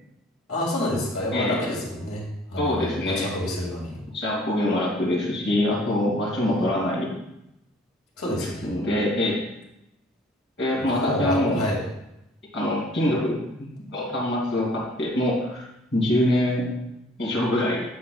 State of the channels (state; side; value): normal; both; correlation 0.55